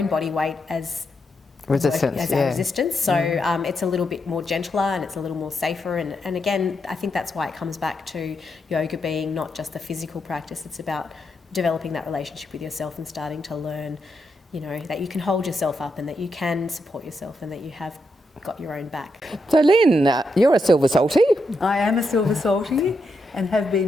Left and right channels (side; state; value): both; normal; correlation 0.82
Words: body weight as resistance, our resistance, so it's a little bit more gentler and it's a little more safer, and again I think that's why it comes back to yoga being not just a physical practice, it's about developing that relationship with yourself and starting to learn, you know, that you can hold yourself up and that you can support yourself and that you have got your own back. So Lynn, you're a Silver Salty. I am a Silver Salty and have